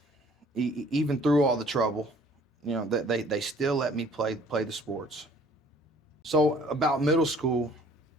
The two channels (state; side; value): normal; both; correlation 0.55